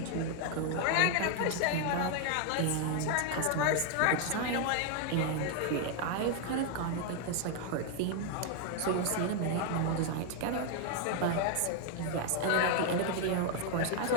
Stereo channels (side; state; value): both; different; correlation 0.00